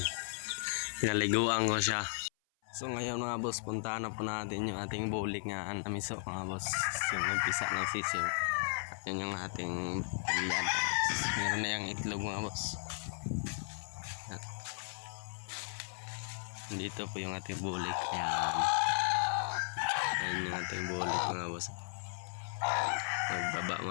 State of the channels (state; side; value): silent; right; 54 dB below the other